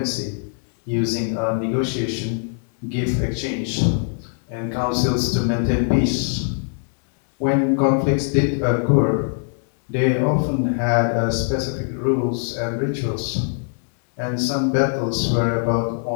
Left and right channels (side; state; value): right; silent; 64 dB below the other